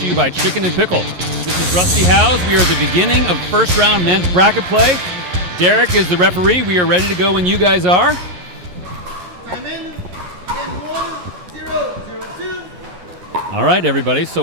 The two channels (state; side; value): late; left; 11 ms